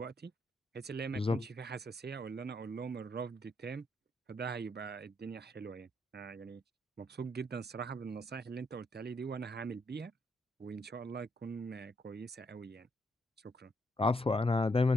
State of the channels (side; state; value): both; normal; correlation 0.75